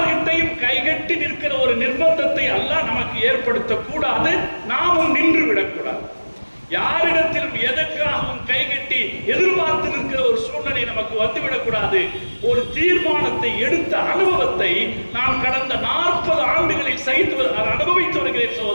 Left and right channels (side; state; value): both; inverted; correlation -1.00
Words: கைகட்டி நிற்கிற ஒரு நிர்பந்தத்தை அல்லாஹ் நமக்கு ஏற்படுத்த கூடாது, நாமும் நின்று விடக்கூடாது. யாரிடத்திலும் எதற்காகவும் கைகட்டி எதிர்பார்த்து நிற்கிற ஒரு சூழ்நிலை நமக்கு வந்துவிடக்கூடாது. ஒரு தீர்மானத்தை எடுத்த அனுபவத்தை நான் கடந்த 40 ஆண்டுகளில் அனுபவித்து வருகிறேன்